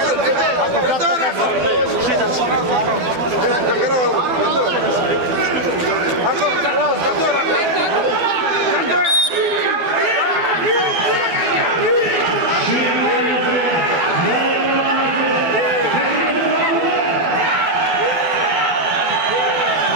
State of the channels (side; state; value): left; late; 12 ms